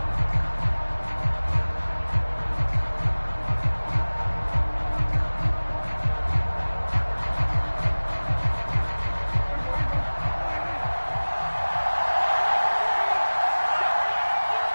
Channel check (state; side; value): inverted; both; correlation -1.00